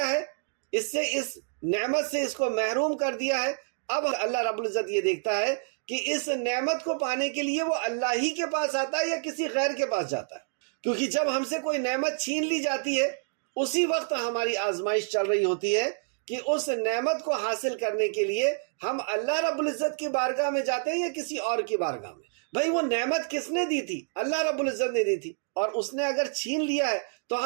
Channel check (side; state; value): left; silent; digital silence